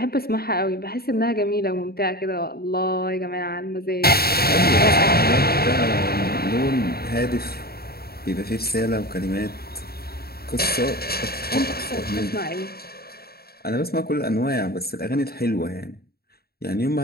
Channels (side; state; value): right; late; 0.45 ms